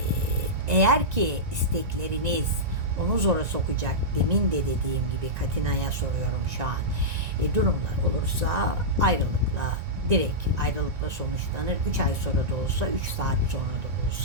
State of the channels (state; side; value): late; left; 1.9 ms